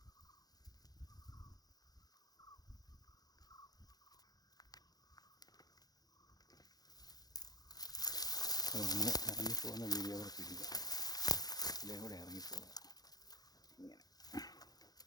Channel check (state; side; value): late; right; 0.19 ms